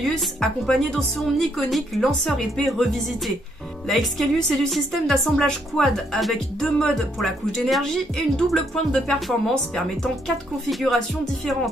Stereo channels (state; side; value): normal; both; correlation 0.72